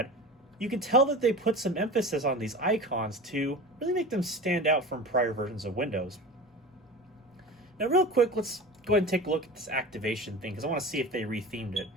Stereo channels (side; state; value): both; normal; correlation 0.33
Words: You can tell that they put some emphasis on these icons to really make them stand out from prior versions of Windows. Now real quick, let's go ahead and take a look at this activation thing, because I want to see if they rethemed it.